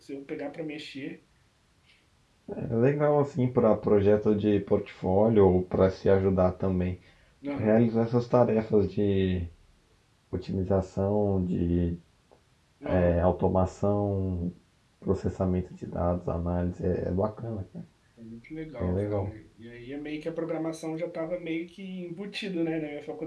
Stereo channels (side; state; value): both; identical; correlation 1.00